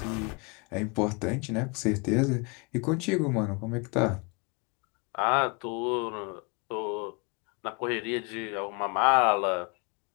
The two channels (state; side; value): quieter; right; 31.7 dB